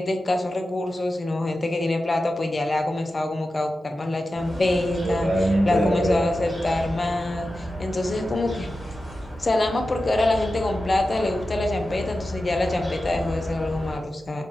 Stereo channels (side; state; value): both; normal; correlation 0.92